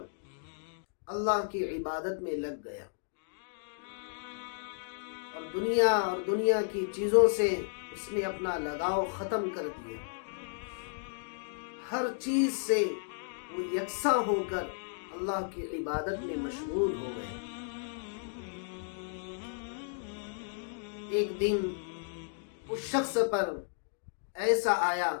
اللہ کی عبادت میں لگ گیا اور دنیا کی چیزوں سے اس نے اپنا لگاؤ ختم کر دیا۔ ہر چیز سے وہ یکساں ہو کر اللہ کی عبادت میں مشغول ہو گئے۔ ایک دن اس شخص پر ایسا آیا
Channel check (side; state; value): right; silent; digital silence